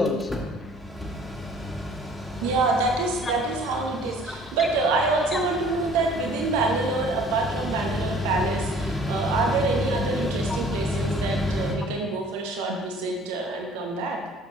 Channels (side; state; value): both; normal; correlation 0.52